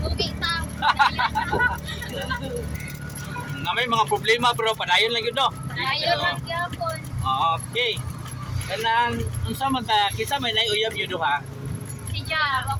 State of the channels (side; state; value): both; identical; correlation 1.00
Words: ta. Na may mga problema pero padayon lang yun, no? Ayaw lang gyapon. Okay. Kanang, unsa man ta, kisa may naiuyab yun duha? Si Ja,